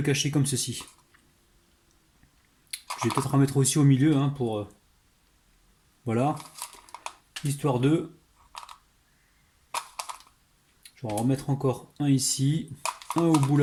cacher comme ceci. Je vais peut-être en mettre aussi au milieu hein, pour... voilà. Histoire de... Je vais en remettre encore un ici, un au bout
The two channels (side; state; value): both; identical; correlation 1.00